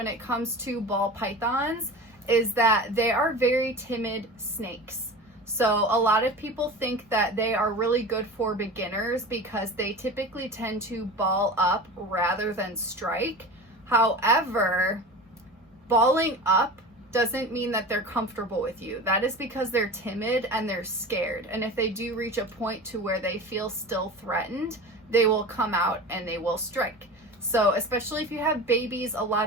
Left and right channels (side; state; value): both; normal; correlation 0.33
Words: it comes to ball pythons is that they are very timid snakes. So a lot of people think that they are really good for beginners because they typically tend to ball up rather than strike. However, balling up doesn't mean that they're comfortable with you. That is because they're timid and they're scared. And if they do reach a point to where they feel still threatened, they will come out and they will strike. So especially if you have babies, a